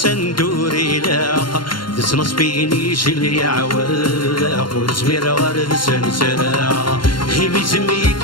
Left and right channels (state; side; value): late; right; 0.72 ms